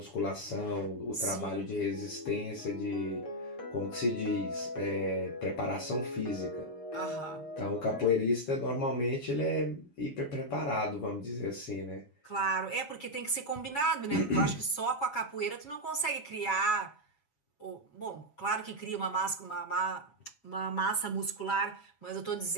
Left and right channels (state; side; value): late; right; 6.8 ms